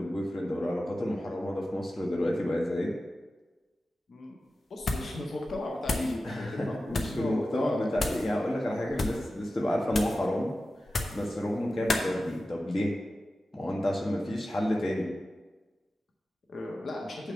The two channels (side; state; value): both; normal; correlation 0.94